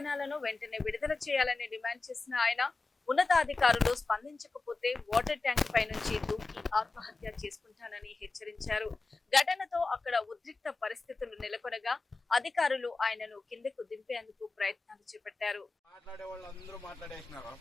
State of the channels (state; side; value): quieter; right; 3.7 dB